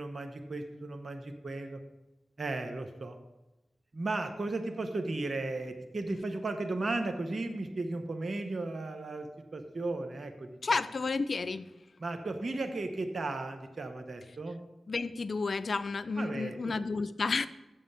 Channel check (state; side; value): normal; both; correlation 0.91